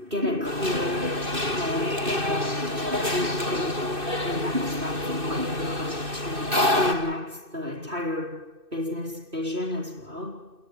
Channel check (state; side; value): late; left; 2.6 ms